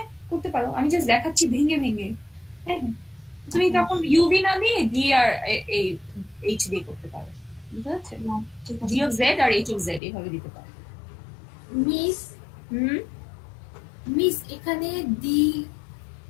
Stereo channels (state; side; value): drops out; right; at 10.0 s